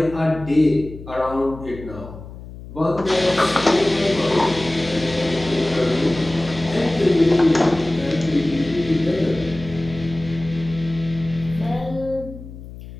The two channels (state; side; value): noise; left; hum, 14 dB below the sound